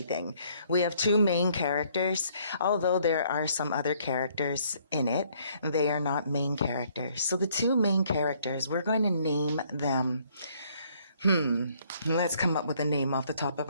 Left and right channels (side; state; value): both; inverted; correlation -0.65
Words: We have two main characters, although there are some other characters in it. They are not main characters. So the two main characters, we're going to name them. Let's come up with a name off the top of